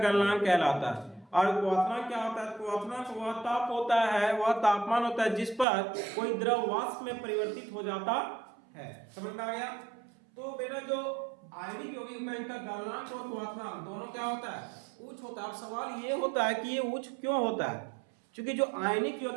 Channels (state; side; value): drops out; left; at 5.7 s